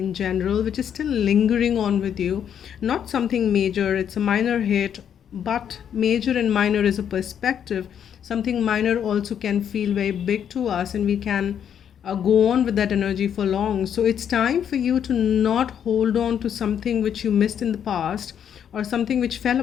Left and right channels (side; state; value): right; quieter; 8.7 dB